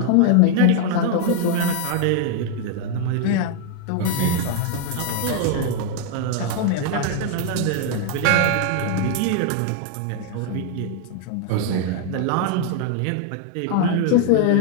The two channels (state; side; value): different; both; correlation 0.00